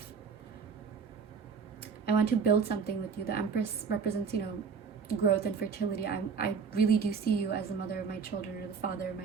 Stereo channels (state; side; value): quieter; left; 5.9 dB